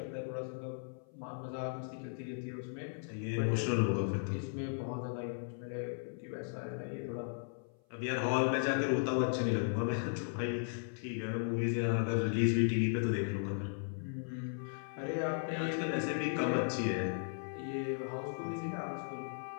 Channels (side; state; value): right; silent; 53 dB below the other